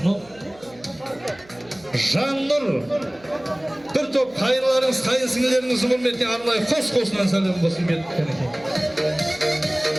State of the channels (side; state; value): right; noise; hum, 26 dB below the sound